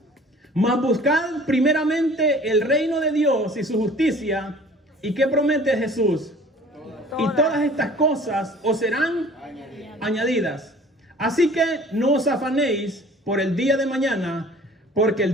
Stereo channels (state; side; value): normal; both; correlation 0.48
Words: Mas buscad primeramente el reino de Dios y su justicia. ¿Y qué promete Jesús? Y todas estas cosas os serán añadidas. Así que no os afanéis por el día de mañana, porque